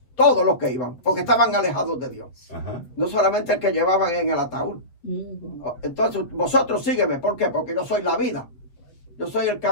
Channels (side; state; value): right; late; 7.7 ms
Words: Todos los que iban, porque estaban alejados de Dios. Ajá. No solamente el que llevaban en el ataúd. Ujú. Entonces, vosotros sígueme. ¿Por qué? Porque yo soy la vida. Yo soy el